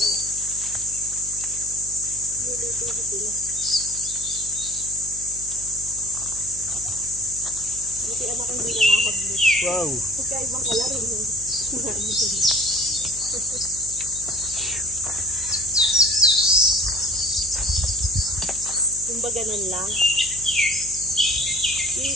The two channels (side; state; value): left; noise; hum, 18 dB below the sound